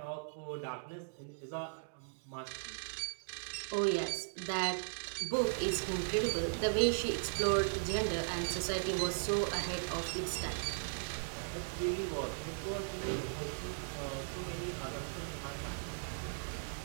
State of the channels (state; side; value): silent; left; digital silence